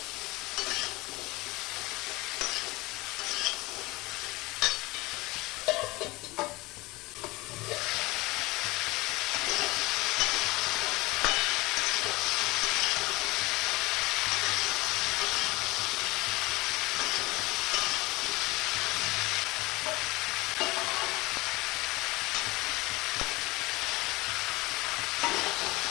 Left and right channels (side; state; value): right; quieter; 21.9 dB